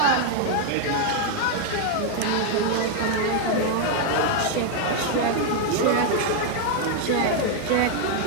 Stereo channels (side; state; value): both; different; correlation 0.01